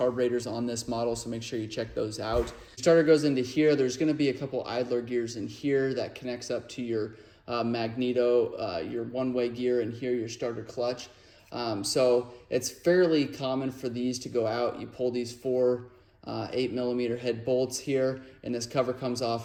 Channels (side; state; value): both; identical; correlation 1.00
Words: on this model, so make sure you check those out. Starter goes into here. There's going to be a couple idler gears in here that connects up to your magneto, your one-way gear, and here your starter clutch. So it's fairly common for these to go out. You pull these four 8mm head bolts here, and this cover comes